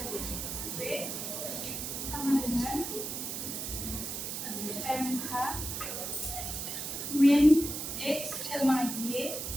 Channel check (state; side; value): noise; right; hiss, 5 dB below the sound